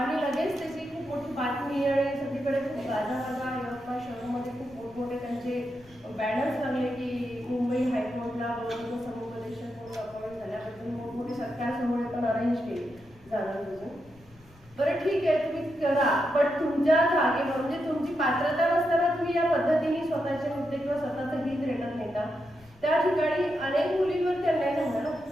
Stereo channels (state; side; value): noise; left; rumble, 26 dB below the sound